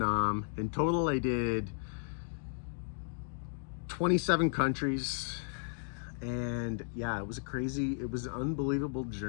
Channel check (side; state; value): right; silent; digital silence